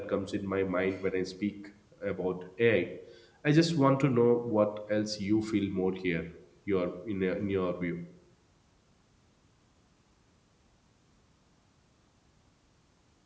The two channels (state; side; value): identical; both; correlation 1.00